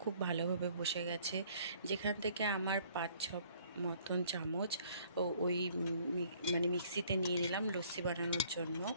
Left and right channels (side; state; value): both; inverted; correlation -0.59